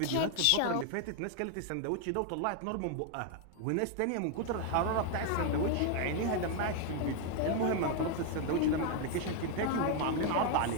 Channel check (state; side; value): different; both; correlation 0.00